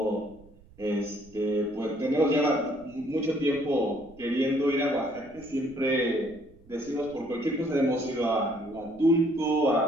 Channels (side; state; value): right; noise; rumble, 25 dB below the sound